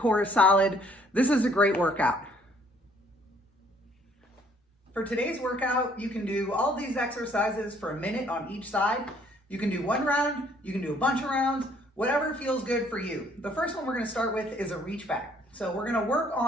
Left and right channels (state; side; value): normal; both; correlation 0.62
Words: is solid, this is a great workout. For today's workout, you can do all these exercises for a minute on each side. You can do one round, you can do a bunch of rounds, whatever feels good for you. The first one we're going to start with is a reach back. So we're going to work